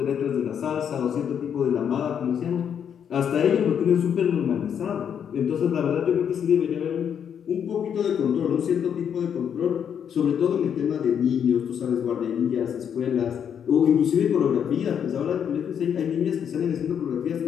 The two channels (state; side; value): quieter; right; 8.2 dB